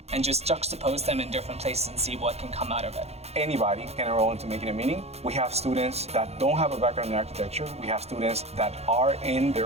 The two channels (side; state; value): left; late; 0.31 ms